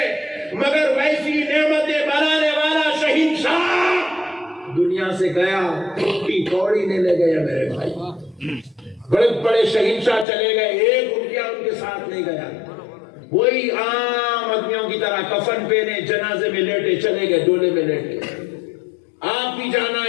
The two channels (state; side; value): drops out; right; at 10.2 s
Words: مگر ویسی نعمتیں بنانے والا شہنشاہ دنیا سے گیا ٹوٹی کوڑی نہیں لے گیا میرے بھائی بڑے بڑے شہنشاہ چلے گئے ایک روپیہ ان کے ساتھ نہیں گیا وہی عام آدمیوں کی طرح کفن پہنے جنازے میں لیٹے چلے گئے ڈولے میں لیٹے آپ بھی جانا